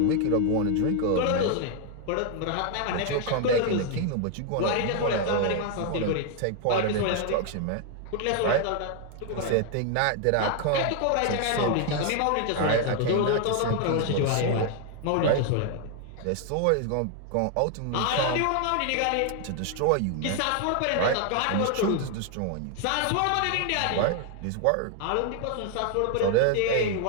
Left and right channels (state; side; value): different; both; correlation 0.00